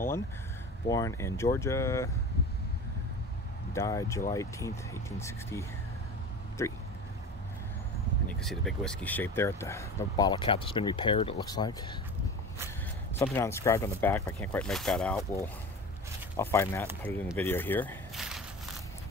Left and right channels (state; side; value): normal; both; correlation 0.33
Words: born in Georgia, died July 18th, 1863. And you can see the big whiskey shape there at the bottle cap that's been repaired, it looks like. Something inscribed on the back, but I can't quite make that out. I'll find that and put it in the video here.